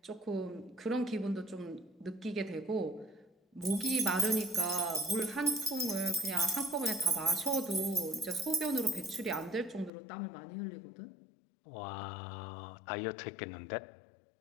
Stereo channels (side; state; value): right; drops out; at 9.9 s